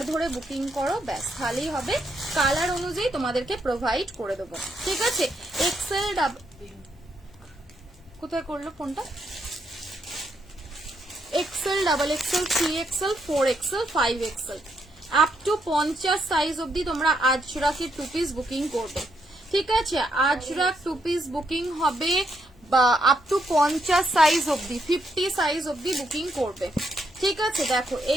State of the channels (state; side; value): noise; left; hum, 28 dB below the sound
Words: ধরে বুকিং করো, ব্যাস তাহলেই হবে, কালার অনুযায়ী তোমাদেরকে প্রোভাইড করে দেবো। ঠিক আছে, এক্সেল কোথায় করলো ফোনটা, XL, double XL, 3XL, 4XL, 5XL up to 50 size অবধি তোমরা আজরাকের 2 পিস বুকিং করবে। ঠিক আছে, আজরাক 2 পিস বুকিং হবে বা আপ টু 50 সাইজ অবধি, 50 সাইজ অবধি বুকিং করবে। ঠিক আছে, দেখো